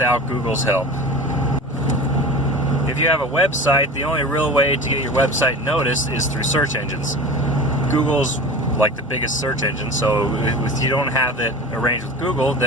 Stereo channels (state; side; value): normal; both; correlation 0.34